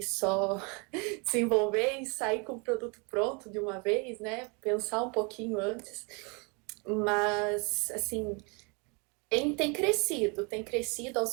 só desenvolver e sair com o produto pronto de uma vez, né? Pensar um pouquinho antes. Mas, assim, tem crescido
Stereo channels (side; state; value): left; quieter; 32.2 dB